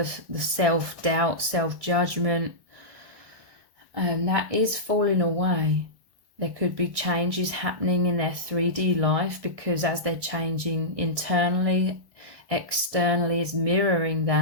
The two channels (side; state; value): left; late; 1.1 ms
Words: self-doubt, self-judgment, and that is falling away. There could be changes happening in their 3D life because as they're changing internally, externally is mirroring